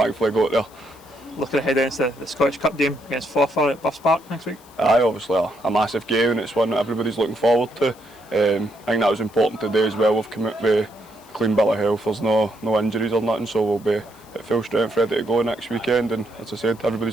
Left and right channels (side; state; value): left; noise; hiss, 26 dB below the sound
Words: got there. Looking ahead into the Scottish Cup game against Forfar at Buffs Park next week? Aye, obviously a massive game, and it's one that everybody's looking forward to. I think that was important today as well. We've come out with a clean bill of health, there's no injuries or nothing, so we'll be at full strength ready to go next weekend, and as I said,